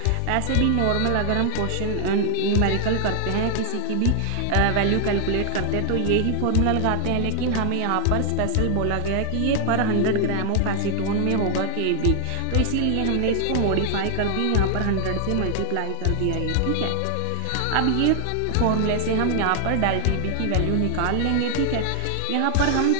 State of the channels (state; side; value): different; both; correlation 0.00